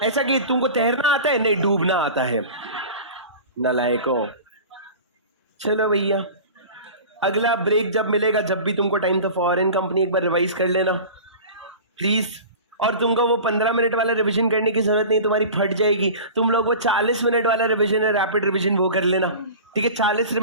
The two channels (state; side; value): inverted; both; correlation -0.36